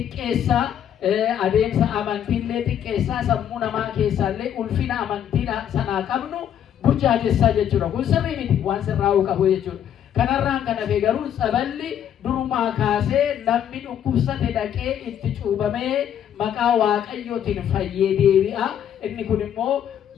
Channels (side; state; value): right; quieter; 9.7 dB